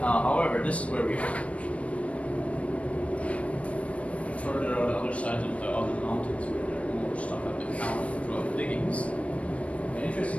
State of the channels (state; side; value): late; right; 0.064 ms